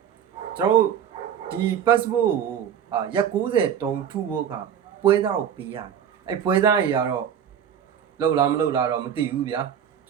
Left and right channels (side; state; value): left; quieter; 8.8 dB